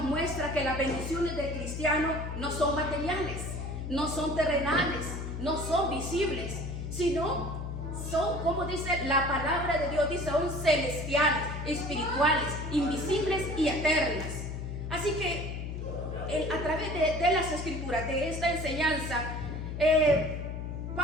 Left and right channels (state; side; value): noise; left; hum, 5 dB below the sound